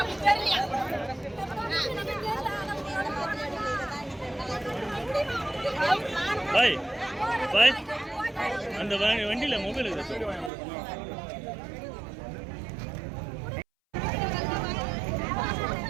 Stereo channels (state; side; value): drops out; left; at 10.5 s